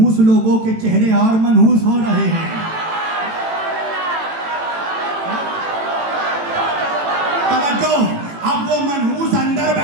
लोगों के चेहरे और मनहूस हो रहे हैं। तवज्जो, अब वो मनहूस अंदर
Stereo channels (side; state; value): left; late; 18 ms